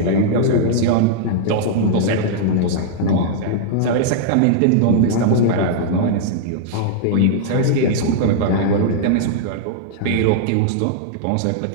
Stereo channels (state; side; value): different; both; correlation -0.01